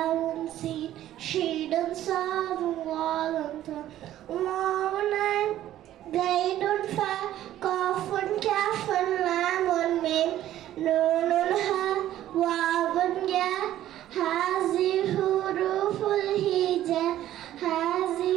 சீன் ஷீடுன் சாதுன் வாலுன் தா வாவுன் ஐன் கைடுன் ஃபா காஃபுன் காஃபுன் லாமுன் மீம் நூனுன் ஹா வாவுன் யா ஹாஸி ஹுரூஃபுல் ஹிஜா ஹாஸி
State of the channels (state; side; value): quieter; left; 12.9 dB